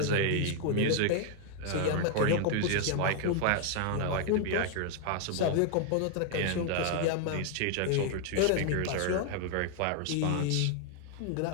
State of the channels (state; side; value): different; both; correlation 0.00